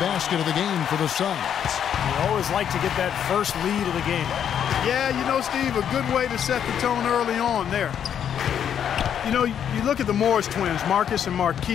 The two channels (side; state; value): right; quieter; 8.9 dB